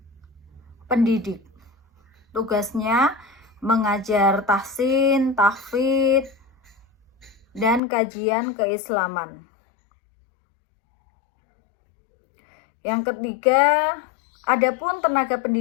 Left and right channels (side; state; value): right; drops out; at 7.8 s